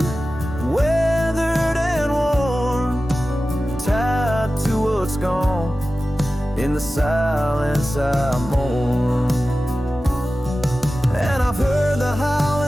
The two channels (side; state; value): both; normal; correlation 0.95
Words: weathered and worn, tied to what's gone. In the silence I mourn. And I've heard the